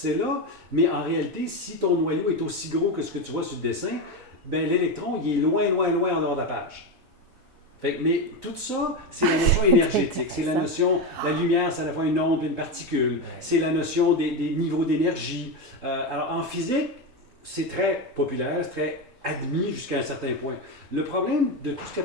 là, mais en réalité, si ton noyau est aussi gros que ce que tu vois sur le dessin, ben, l'électron, il est loin, loin, loin en dehors de la page. Mais tout ça, c'est la notion énergétique. C'est la notion, la lumière, c'est à la fois une onde et une particule. C'est la notion des niveaux d'énergie. Alors, en physique, c'est très populaire, c'est très admis jusqu'à un certain point. Le problème de tout ce qu'on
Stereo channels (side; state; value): both; normal; correlation 0.14